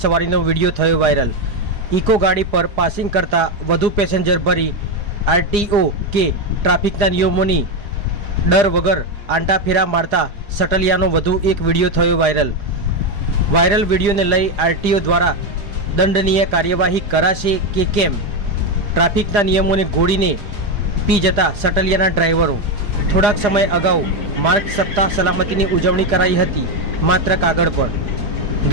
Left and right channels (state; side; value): late; left; 4.9 ms